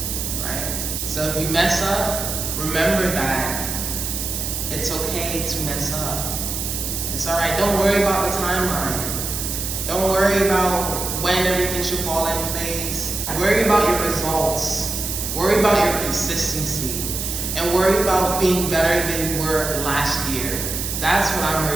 right? So if you mess up, remember that it's okay to mess up. It's all right. Don't worry about the timeline. Don't worry about when everything should fall in place. Worry about your results. Worry about your consistency. And worry about being better than you were last year. That's what I'm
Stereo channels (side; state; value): right; noise; hiss, 4 dB below the sound